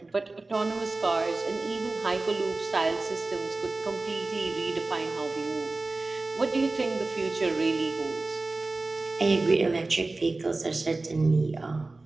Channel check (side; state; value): left; quieter; 3.3 dB